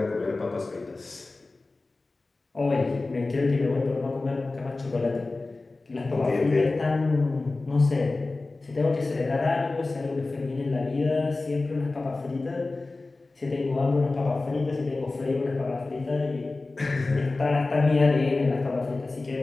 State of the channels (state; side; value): quieter; right; 3.4 dB